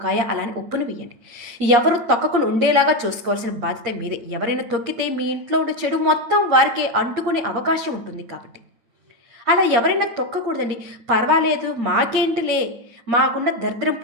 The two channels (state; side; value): late; left; 8.6 ms